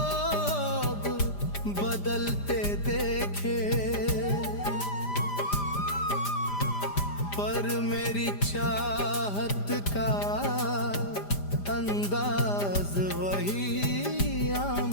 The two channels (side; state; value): right; late; 5.0 ms